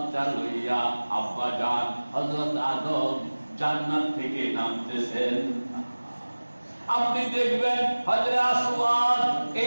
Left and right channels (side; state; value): both; inverted; correlation -1.00